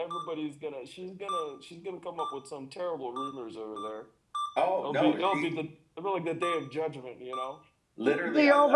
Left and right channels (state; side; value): identical; both; correlation 1.00